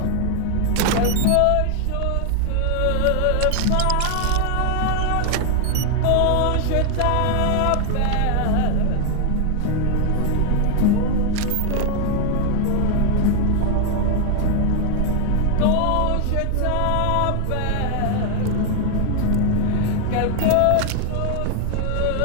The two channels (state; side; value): different; both; correlation 0.00